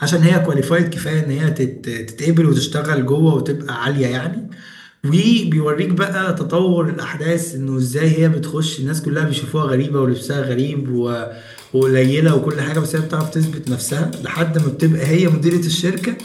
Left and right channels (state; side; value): identical; both; correlation 1.00